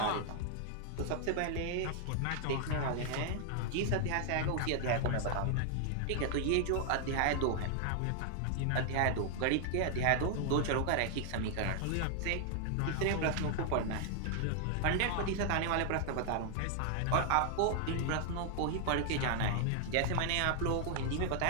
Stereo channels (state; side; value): different; both; correlation 0.00